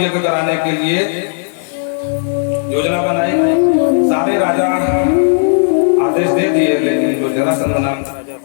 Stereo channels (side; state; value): right; silent; digital silence